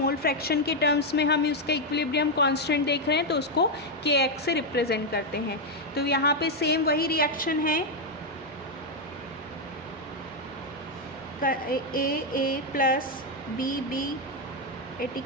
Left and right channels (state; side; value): normal; both; correlation 0.02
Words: फ्रैक्शन के टर्म्स में हम उसका इक्विलिब्रियम कांस्टेंट देख रहे हैं तो उसको के एक्स से रिप्रेजेंट करते हैं। तो यहाँ पे सेम वही रिएक्शन है, A plus B at